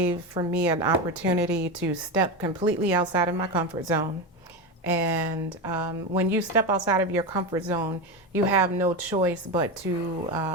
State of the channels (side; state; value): both; normal; correlation 0.18